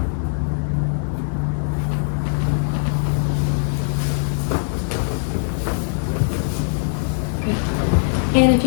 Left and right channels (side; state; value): right; silent; digital silence